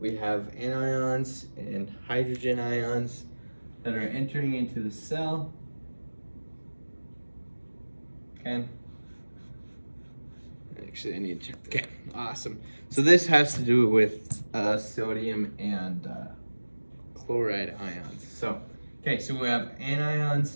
have anions and hydrogen ions that are entering into the cell. Okay. Actually, I need to check. Okay, awesome. So this has to do with sodium and chloride ions. So, okay, so we have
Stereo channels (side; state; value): both; inverted; correlation -1.00